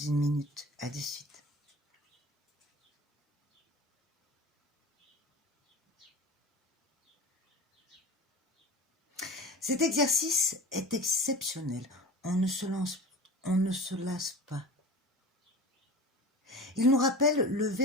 minute. À de suite. Cet exercice est exceptionnel. On ne se lasse pas. Il nous rappelle le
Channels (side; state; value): both; normal; correlation 0.34